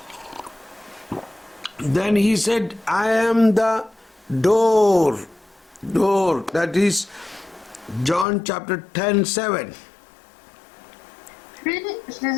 » Then he said, I am the door. Door. That is John chapter 10:7. Puis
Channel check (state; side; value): drops out; right; at 8.2 s